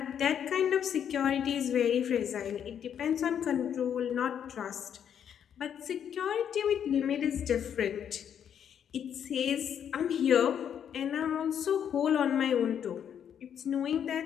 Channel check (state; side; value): quieter; right; 8.7 dB